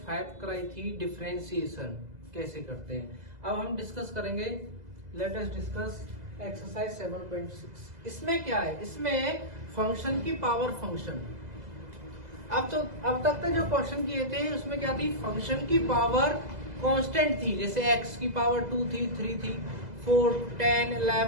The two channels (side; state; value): left; late; 2.0 ms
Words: कराई थी, डिफरेंशिएशन कैसे करते हैं। अब हम डिस्कस करेंगे, लेट अस डिस्कस एक्सरसाइज 7.6। इसमें क्या है, इसमें फंक्शन की पावर फंक्शन। अब तक जो क्वेश्चन किए थे उसमें क्या थी, फंक्शन की पावर कांस्टेंट थी, जैसे x की पावर 2 थी, 3 थी, 4, 10,